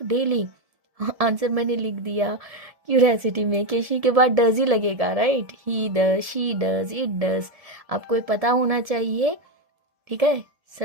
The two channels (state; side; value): late; left; 1.7 ms